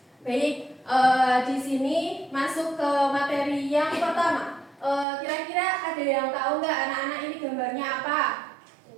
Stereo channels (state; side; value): drops out; left; at 5.1 s